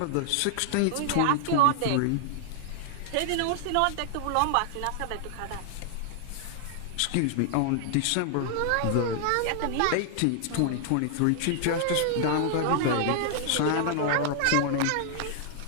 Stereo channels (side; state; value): both; different; correlation 0.00